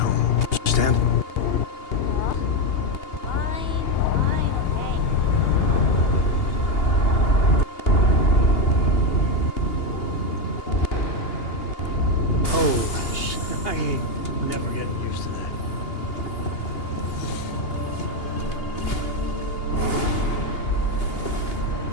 Understand? Fine, okay. Oh, I ain't never getting used to that.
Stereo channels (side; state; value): right; late; 2.8 ms